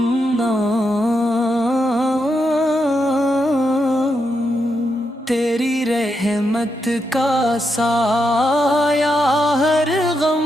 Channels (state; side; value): normal; both; correlation 0.83